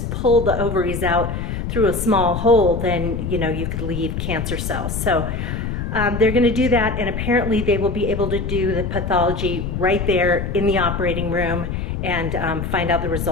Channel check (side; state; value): left; noise; rumble, 3 dB below the sound